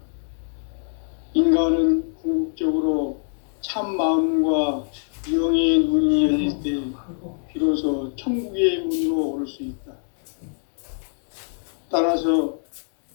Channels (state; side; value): silent; right; digital silence